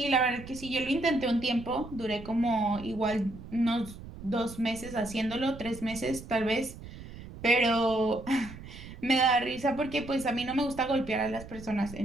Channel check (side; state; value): right; noise; rumble, 14 dB below the sound